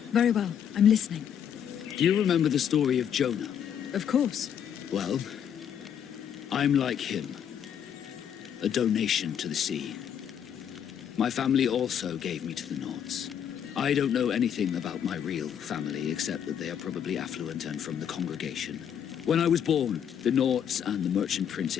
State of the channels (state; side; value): quieter; right; 8.8 dB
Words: Very well. I'm listening. Do you remember the story of Jonah? Of course. Well, I'm like him. A donation to the sea. My family also gave me to the Nauts. I don't know anything about my real family, except that they are probably affluent and from the congregation. When I was born, the Nauts and the merchant